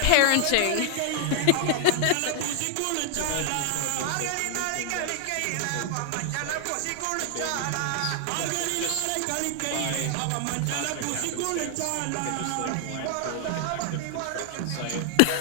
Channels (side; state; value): both; different; correlation 0.00